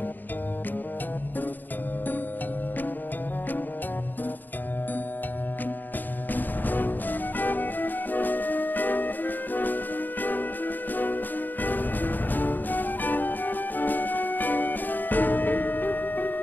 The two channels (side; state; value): right; late; 0.089 ms